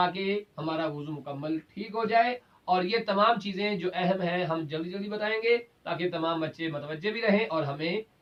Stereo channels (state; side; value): identical; both; correlation 1.00